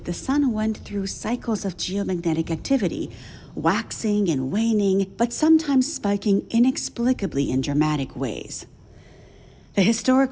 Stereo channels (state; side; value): identical; both; correlation 1.00